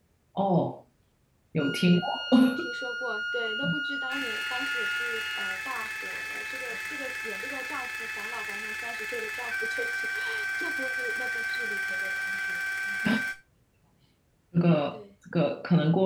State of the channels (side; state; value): both; identical; correlation 1.00